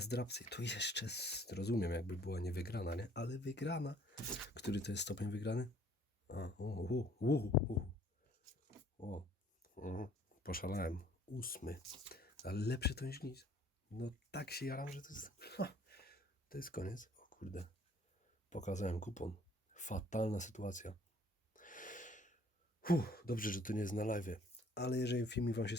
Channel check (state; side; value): normal; both; correlation 0.58